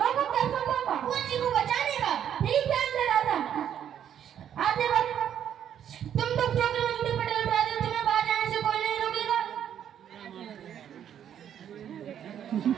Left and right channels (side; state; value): left; quieter; 9.6 dB